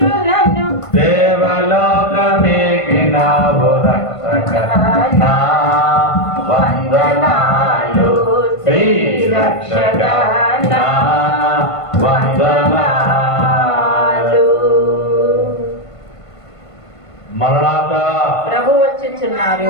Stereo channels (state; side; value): late; right; 1.5 ms